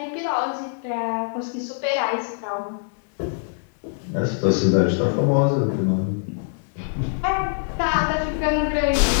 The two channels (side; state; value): right; silent; digital silence